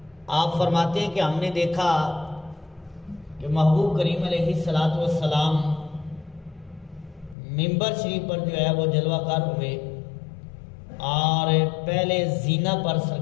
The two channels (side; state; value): right; drops out; at 7.4 s